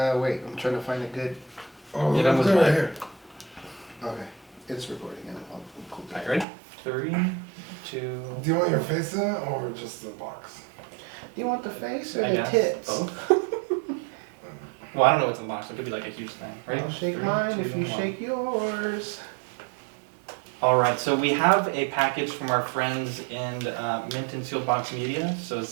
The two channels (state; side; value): drops out; left; at 6.5 s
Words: Wait, I'm trying to find a good. Oh, Yeah, that was look right mine. here. Okay, it's recording. And I'll cool Alright, ready? 3, 2. Do you want your face in it or just the box? Do you want the face or I the guess tits? both. Well, I don't know what's in the box. It could be like a huge thing. Ready? I'll shake 3, mine 2, if you 1. shake yours. Alright, so we have a package from our friends in Mint and Sealed Box Media. So